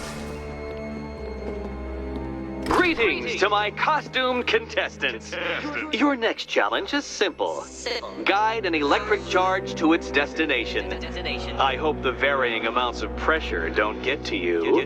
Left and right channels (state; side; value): identical; both; correlation 1.00